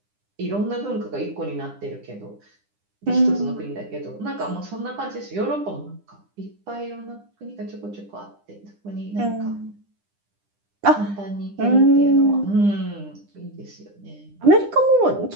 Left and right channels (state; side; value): late; left; 9.9 ms